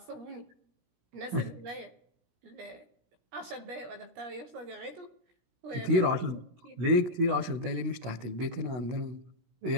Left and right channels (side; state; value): left; late; 17 ms